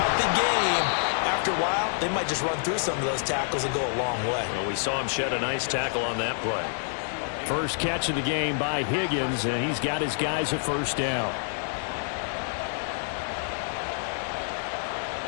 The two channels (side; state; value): right; silent; 60 dB below the other